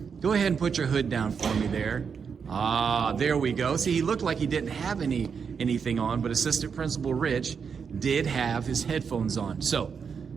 go ahead and put your hood down for me there. Ah, there we go. See, he looked like he didn't have anything on, but Assistant Principal Rich did have his headphones on. So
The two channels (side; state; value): left; quieter; 6.3 dB